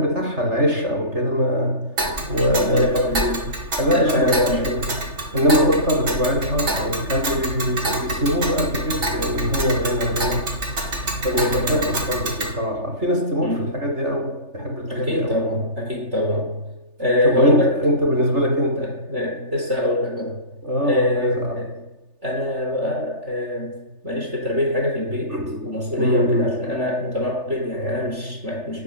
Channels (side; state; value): left; late; 3.4 ms